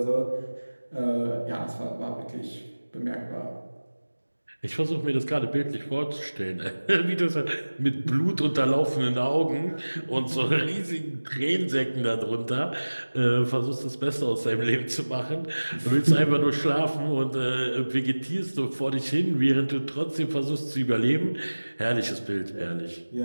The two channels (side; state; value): both; inverted; correlation -1.00